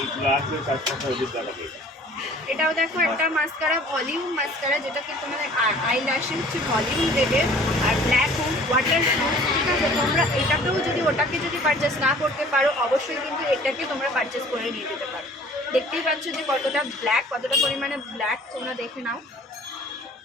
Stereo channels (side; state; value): both; normal; correlation 0.50